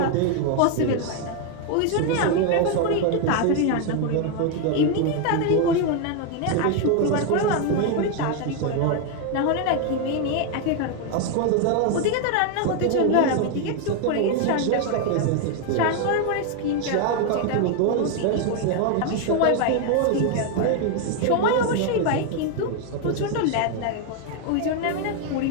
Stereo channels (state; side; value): different; both; correlation 0.01